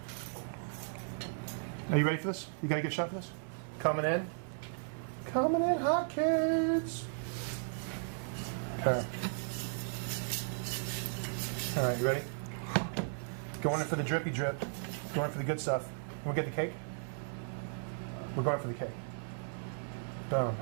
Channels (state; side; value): silent; left; 54 dB below the other